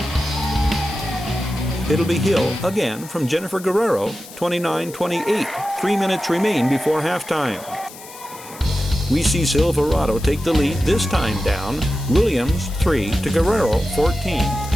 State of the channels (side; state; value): left; noise; hiss, 17 dB below the sound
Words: It'll be Hill again from Jennifer Guerrero, 29-28. 3 minutes remain before halftime. We see Silverado take the lead, this time down. Williams, 3 to Guerrero, 14.